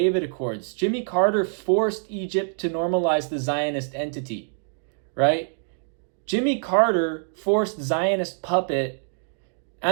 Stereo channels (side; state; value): left; silent; digital silence